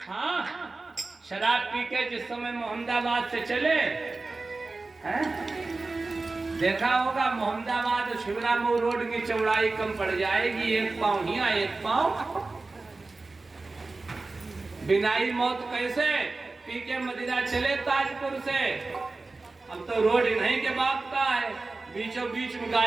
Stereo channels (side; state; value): left; quieter; 3.5 dB